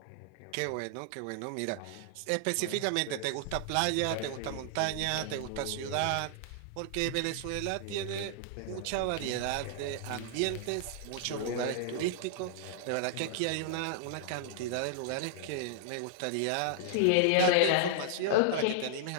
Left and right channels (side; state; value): both; different; correlation -0.01